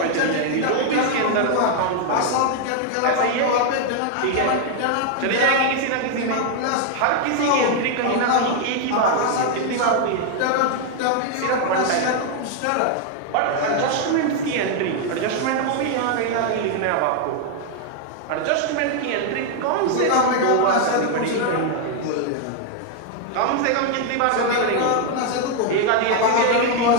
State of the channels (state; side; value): different; both; correlation 0.00